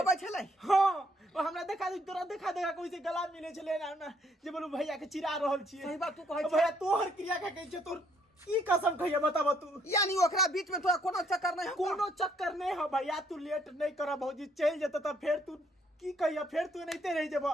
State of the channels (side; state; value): both; normal; correlation 0.68